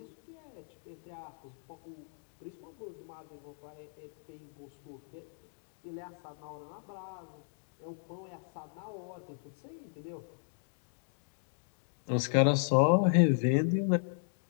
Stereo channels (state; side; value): silent; right; digital silence